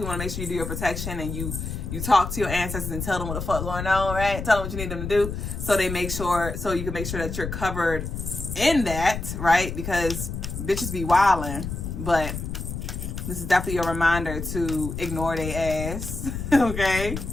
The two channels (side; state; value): left; noise; rumble, 6 dB below the sound